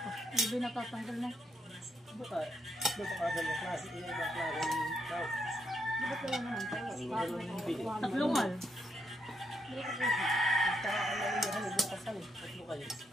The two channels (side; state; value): both; normal; correlation 0.78